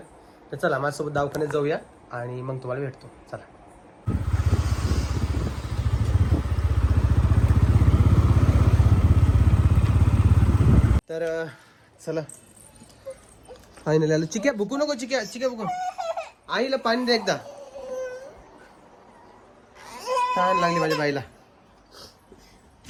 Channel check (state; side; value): identical; both; correlation 1.00